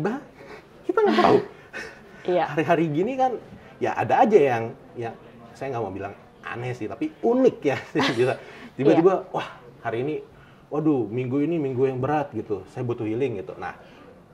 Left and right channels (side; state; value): both; identical; correlation 1.00